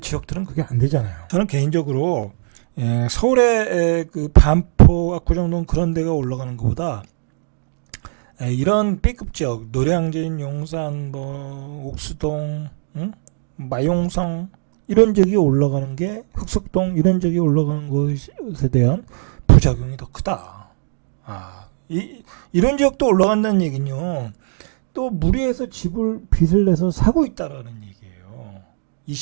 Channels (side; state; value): left; silent; digital silence